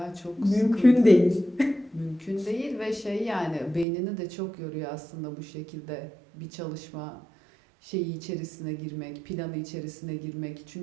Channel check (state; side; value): drops out; left; at 3.9 s